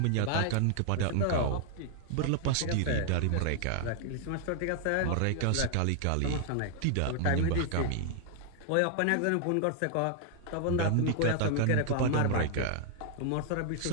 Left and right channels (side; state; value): both; different; correlation 0.00